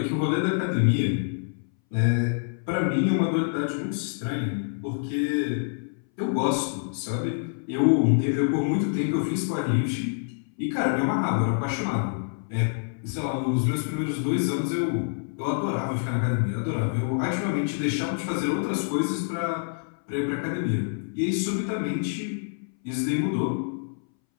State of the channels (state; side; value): silent; right; 60 dB below the other